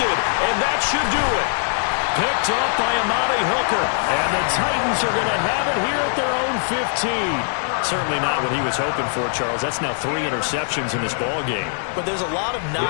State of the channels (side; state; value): right; silent; digital silence